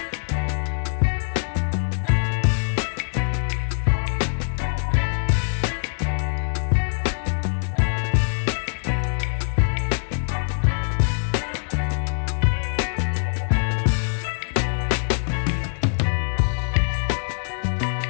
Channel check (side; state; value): right; silent; digital silence